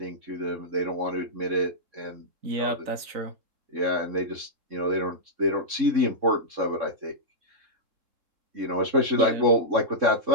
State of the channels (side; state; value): left; late; 3.7 ms